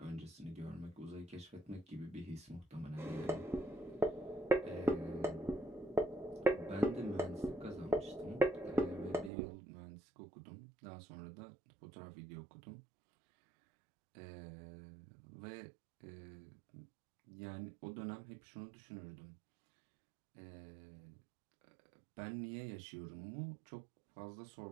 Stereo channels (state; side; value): drops out; left; at 9.3 s